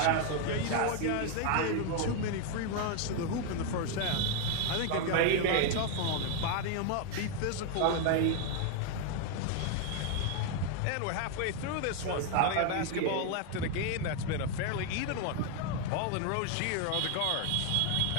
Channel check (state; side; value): different; both; correlation 0.01